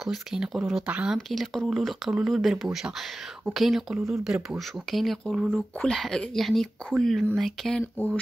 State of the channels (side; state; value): both; normal; correlation 0.96